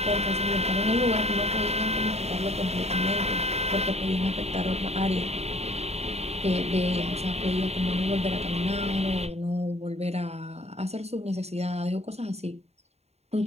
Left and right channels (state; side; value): late; left; 0.31 ms